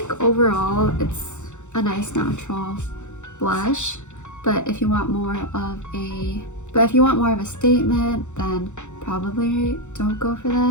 overall it's a nice natural blush, but if you want more of a statement, then probably don't go for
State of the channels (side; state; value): right; late; 0.84 ms